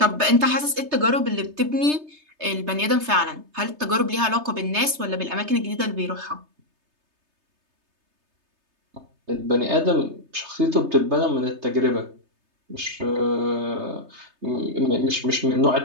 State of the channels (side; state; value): left; late; 3.3 ms